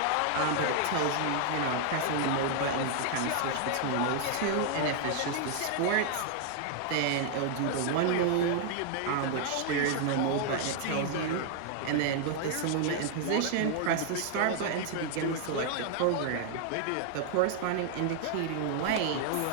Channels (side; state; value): both; different; correlation 0.00